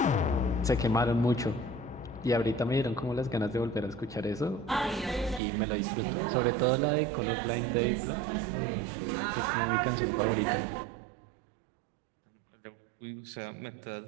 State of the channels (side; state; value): left; drops out; at 5.4 s